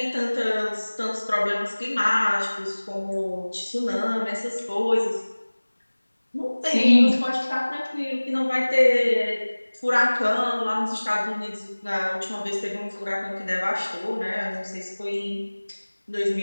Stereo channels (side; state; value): both; inverted; correlation -1.00